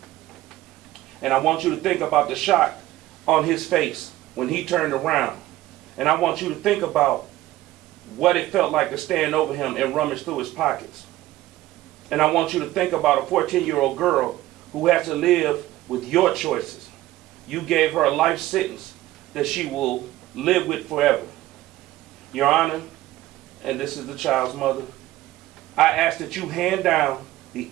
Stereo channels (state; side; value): quieter; left; 16.0 dB